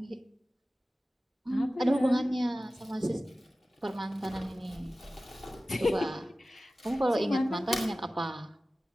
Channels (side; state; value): both; normal; correlation 0.96